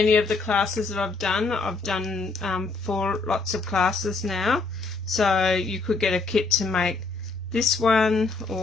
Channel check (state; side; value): quieter; right; 3.8 dB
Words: of the classes that I've done. I've done 4 lots of classes now, so you could get a kit to make this one,